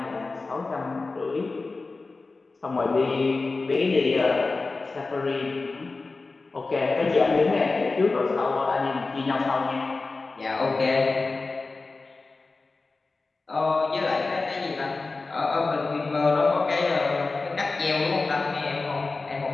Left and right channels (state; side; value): quieter; right; 3.7 dB